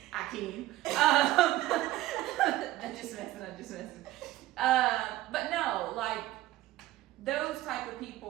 I can. I'm just messing. But no, like, those type of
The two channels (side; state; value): left; quieter; 15.9 dB